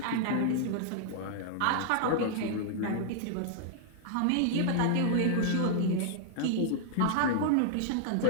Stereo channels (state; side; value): different; both; correlation -0.01